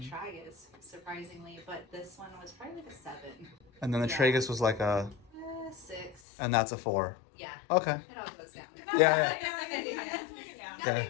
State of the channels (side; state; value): right; drops out; at 6.2 s